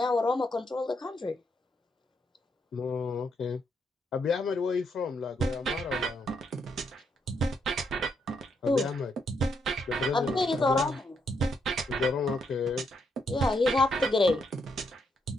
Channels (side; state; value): both; normal; correlation 0.77